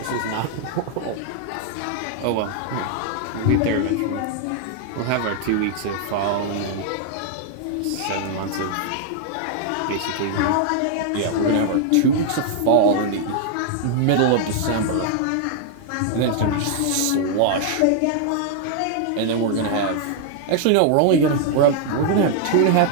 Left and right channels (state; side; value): different; both; correlation 0.00